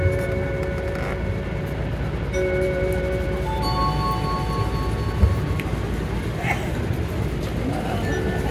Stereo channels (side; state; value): both; identical; correlation 1.00